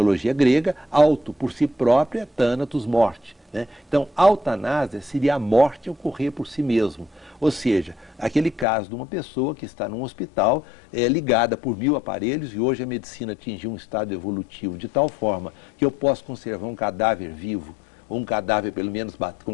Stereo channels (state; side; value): drops out; right; at 8.7 s